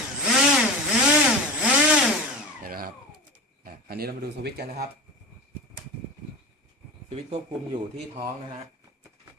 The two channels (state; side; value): normal; both; correlation 0.29